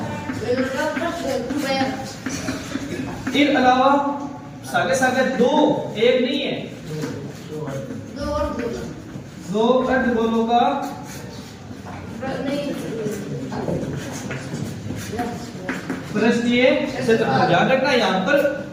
इसके अलावा सागे सागे 2 एक नहीं है 2 अर्धगोलों का पृष्ठीय क्षेत्रफल। ध्यान रखना यहाँ पर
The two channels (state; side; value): identical; both; correlation 1.00